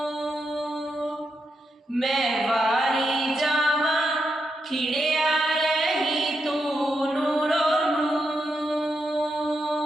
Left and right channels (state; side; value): normal; both; correlation 0.84